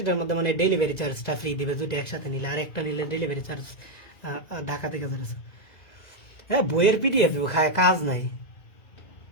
এটার মধ্যে মানে ডেলিভারি চার্জটা ফ্রি দিবে দুটো একসাথে নিলে, আর একটা নিলে ডেলিভারি চার্জ ঢাকা থেকে যাচ্ছে। হ্যাঁ, বইয়ের পিডিএফ খায় কাজ নাই,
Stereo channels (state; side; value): late; right; 1.9 ms